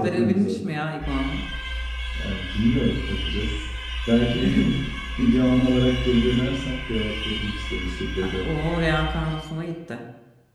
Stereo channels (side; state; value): both; identical; correlation 1.00